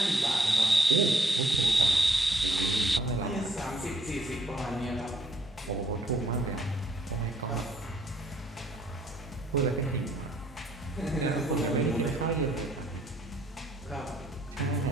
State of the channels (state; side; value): normal; both; correlation 0.67